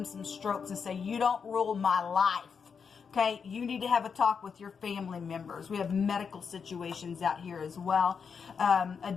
some strokes and say, you don't rule my life. Okay, you need to have a talk with your family members. We have medical situations out here as well. A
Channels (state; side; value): quieter; right; 6.2 dB